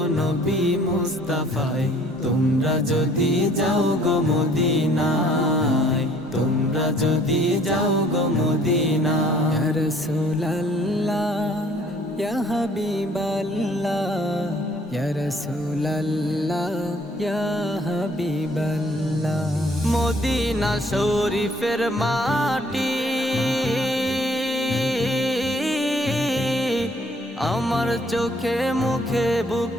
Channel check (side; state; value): both; normal; correlation 0.59